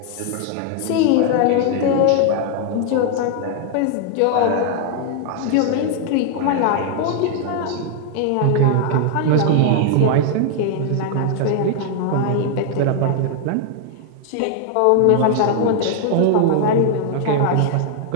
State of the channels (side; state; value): both; different; correlation 0.00